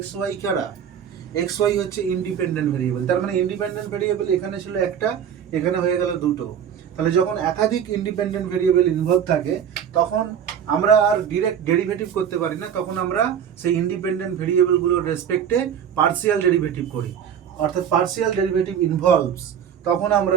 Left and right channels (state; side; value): quieter; left; 8.5 dB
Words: x y কারা, x y হচ্ছে ইন্ডিপেন্ডেন্ট ভেরিয়েবল। তার মানে ইন্ডিপেন্ডেন্ট ভেরিয়েবল এখানে ছিল একটা, এখানে হয়ে গেল দুটো। তাহলে যখন একাধিক ইন্ডিপেন্ডেন্ট ভেরিয়েবল ইনভলভ থাকে তখন আমরা আর ডিরেক্ট ডেরিভেটিভ করতে পারি না, তখন আমরা সেই ইন্ডিপেন্ডেন্ট ভেরিয়েবলগুলোর রেসপেক্টে পার্সিয়াল ডেরিভেটিভ করি, অর্থাৎ পার্সিয়াল ডেরিভেটিভ ইনভলভস, তখন